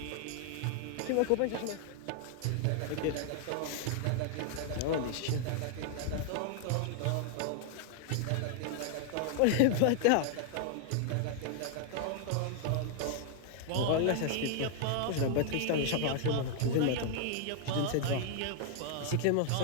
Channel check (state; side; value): different; both; correlation 0.00